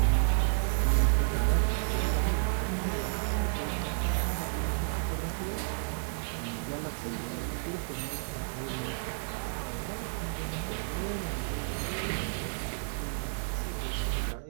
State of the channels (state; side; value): silent; left; digital silence